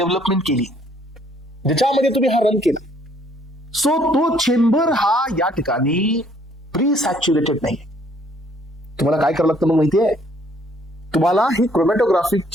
केली, ज्याच्यामध्ये तुम्ही हा रन केला, सो तो चेंबर हा या ठिकाणी प्री सॅच्युरेटेड नाही. तुम्हाला काय करावं लागतं मग माहितीये? तुम्हाला ही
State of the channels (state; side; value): normal; both; correlation 0.63